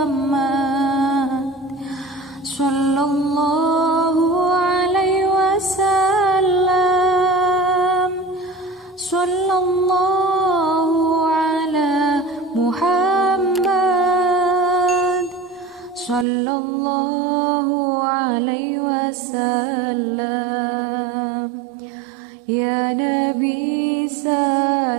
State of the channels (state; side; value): drops out; left; at 16.2 s